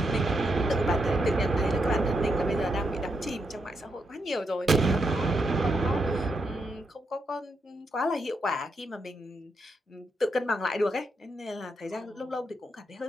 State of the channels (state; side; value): normal; both; correlation 0.81